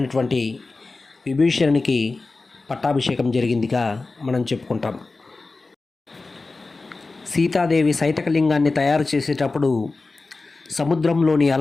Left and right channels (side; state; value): right; quieter; 3.6 dB